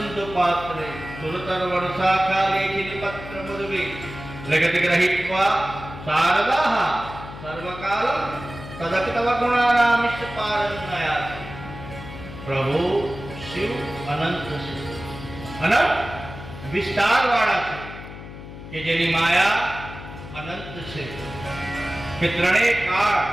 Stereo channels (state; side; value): noise; left; hum, 13 dB below the sound